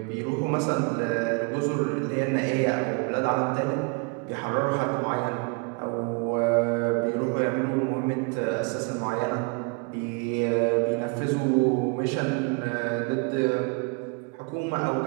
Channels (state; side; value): quieter; left; 32.2 dB